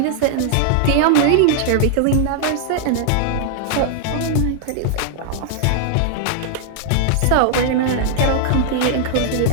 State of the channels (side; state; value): both; different; correlation -0.01